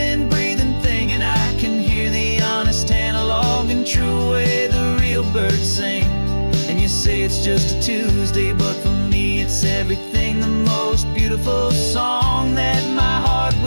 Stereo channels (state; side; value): inverted; both; correlation -1.00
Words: breathing thing. And I can hear the honest analog and true way the real birds sing. And you say it's just a Tuesday, but for me it's everything, the most beautiful song that my heart